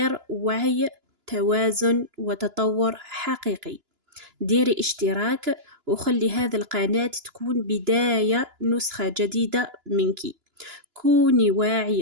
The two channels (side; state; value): left; late; 2.9 ms